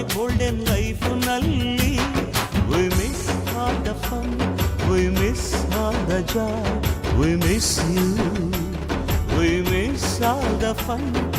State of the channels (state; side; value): identical; both; correlation 1.00